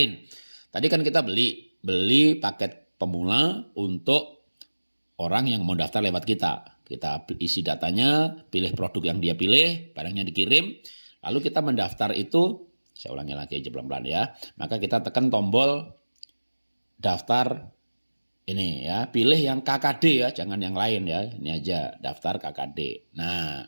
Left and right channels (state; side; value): inverted; both; correlation -1.00